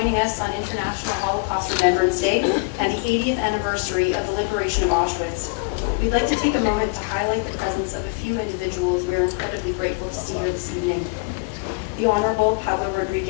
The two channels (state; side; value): quieter; right; 28.9 dB